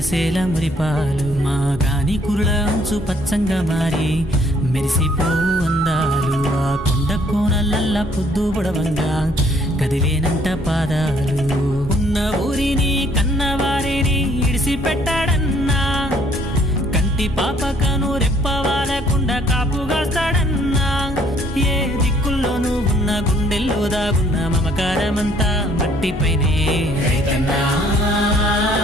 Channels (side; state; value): both; normal; correlation 0.63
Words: మురిపాలు మా గాని కురుల అంచు పచ్చంగా మారి మెరిసిపోవు అందాలు ఆ కొండ కోనలల్ల పొద్దు పొడవంగా కదిలేనంట పాదాలు ఉన్న ఊరిని కన్నవారిని ఇడిసిపెట్టాడన్నా కంటి పాపకను రెప్పవాలకుండా కాపుగాస్తాడన్నా ఏ దిక్కుల్లోనూ ఉన్న గుండెల్లో దాగున్న మమకారమంతా మట్టిపైనే రైతన్నా